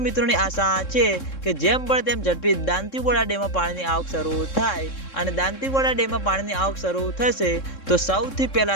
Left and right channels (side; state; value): right; late; 3.7 ms